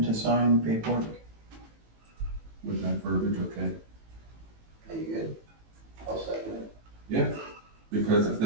to sign paperwork. with that verbiage, okay. Are you good? I'll second it. Because if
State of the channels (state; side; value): late; left; 18 ms